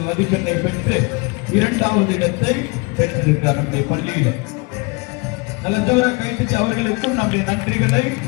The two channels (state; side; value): quieter; right; 28.8 dB